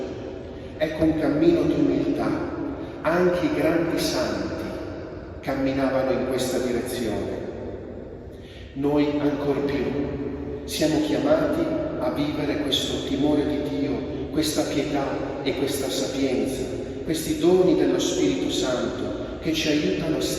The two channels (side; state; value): both; identical; correlation 1.00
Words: Ecco un cammino di umiltà. Anche i grandi santi camminavano in questa direzione. Noi ancor più siamo chiamati a vivere questo timore di Dio, questa pietà e questa sapienza, questi doni dello Spirito Santo che ci aiutano a